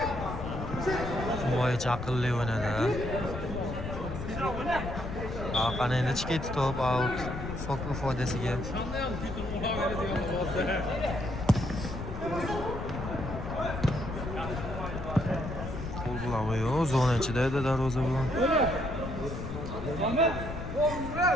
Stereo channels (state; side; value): noise; left; rumble, 6 dB below the sound